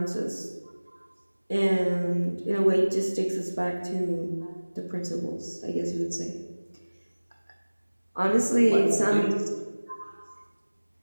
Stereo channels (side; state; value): both; inverted; correlation -1.00